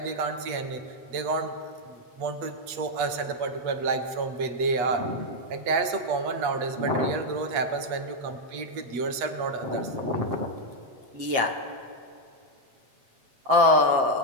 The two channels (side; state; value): left; late; 8.3 ms